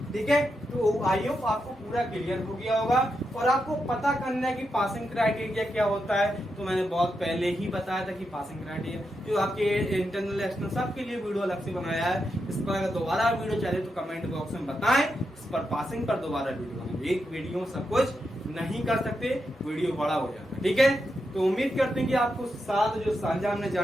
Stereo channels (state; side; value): normal; both; correlation 0.85